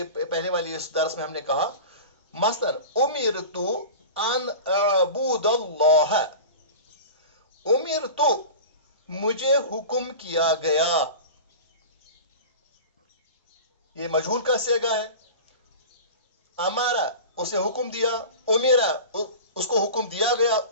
पहले वाली इस दर्स में हमने कहा, मसलन उमिरतु अन अबूदल्लाह, उमिरतु, मुझे हुक्म किया गया, ये मजहूल का सेगा है। अमारा, उसे हुक्म दिया, उमिरा, उसको हुक्म दिया गया,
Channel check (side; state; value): both; inverted; correlation -0.34